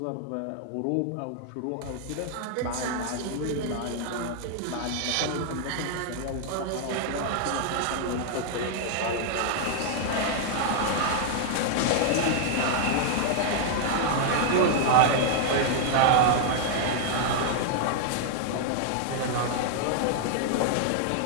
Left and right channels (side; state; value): both; different; correlation 0.00